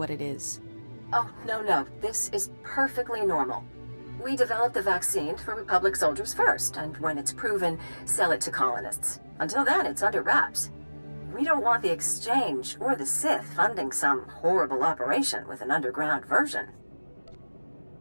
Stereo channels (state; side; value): inverted; both; correlation -1.00